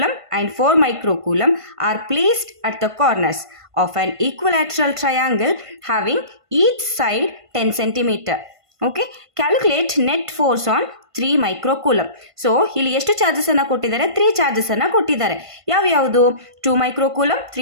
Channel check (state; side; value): late; left; 1.5 ms